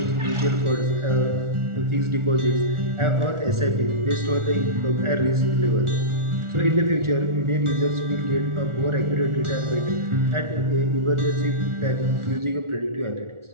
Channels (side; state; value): left; late; 1.4 ms